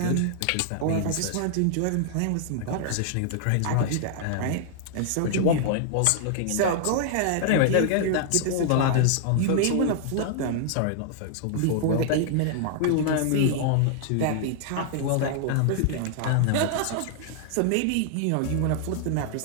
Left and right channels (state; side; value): different; both; correlation -0.01